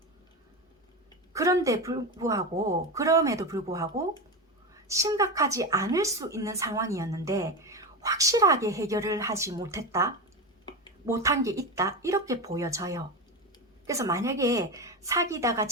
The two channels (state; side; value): normal; both; correlation 0.19